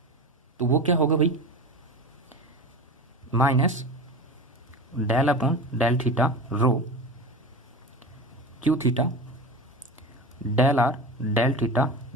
तो वो क्या होगा भाई, minus del upon del theta rho Q theta del are del theta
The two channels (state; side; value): normal; both; correlation 0.28